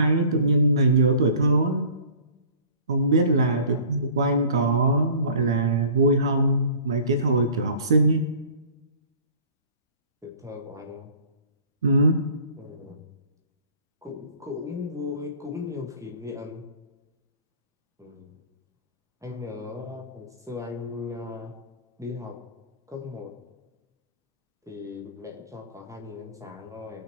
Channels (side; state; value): both; inverted; correlation -0.47